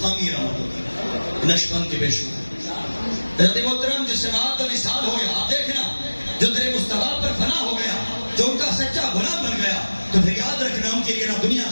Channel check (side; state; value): both; inverted; correlation -1.00